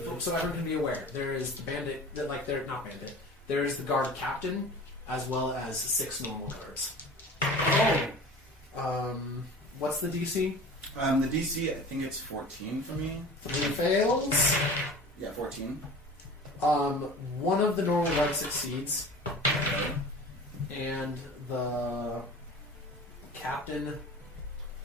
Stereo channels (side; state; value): both; normal; correlation 0.39